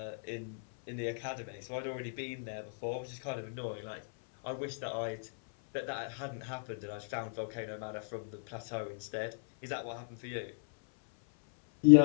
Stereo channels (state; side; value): silent; right; 54 dB below the other